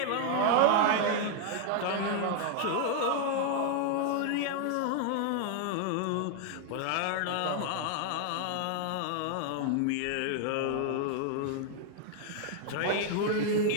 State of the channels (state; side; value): different; both; correlation 0.00